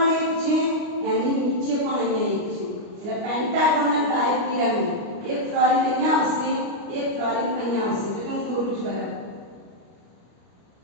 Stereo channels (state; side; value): late; left; 29 ms